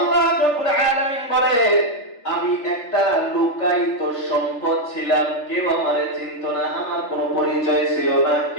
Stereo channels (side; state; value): right; late; 3.4 ms